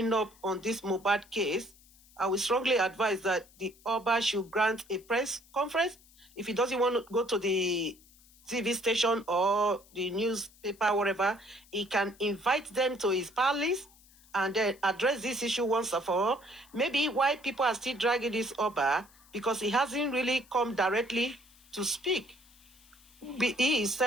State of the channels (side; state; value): left; noise; hiss, 27 dB below the sound